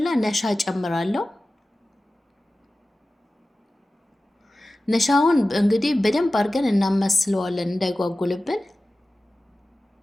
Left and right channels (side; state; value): both; normal; correlation 0.96